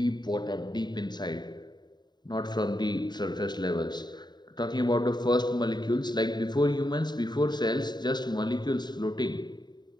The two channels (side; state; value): right; late; 0.21 ms